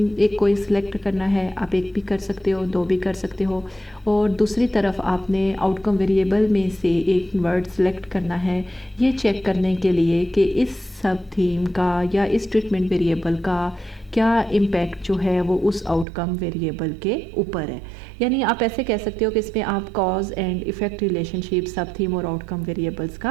ایک کوئی سلیکٹ کرنا ہے، آپ ایک بھی کر سکتے ہو، دو بھی کر سکتے ہو، اور دوسری طرف آپ نے آؤٹ کم ویریبل میں سے ایک ورڈ سلیکٹ کرنا ہے یہ چیک کرنے کے لیے کہ اس سب تھیم کا یا اس ٹریٹمنٹ ویریبل کا کیا امپیکٹ جو ہے وہ اس آؤٹ کم ویریبل کے اوپر ہے. یعنی آپ ایسے کہہ سکتے ہو کہ اس میں آپ cause and effect relationship sub theme اور آؤٹ کم ویریبلس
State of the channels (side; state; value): left; drops out; at 16.1 s